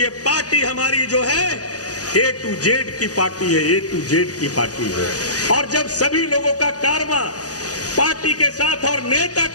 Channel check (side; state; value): right; late; 0.67 ms